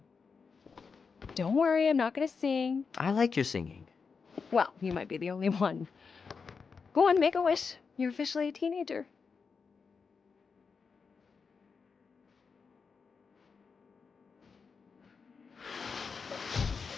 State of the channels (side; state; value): right; quieter; 5.3 dB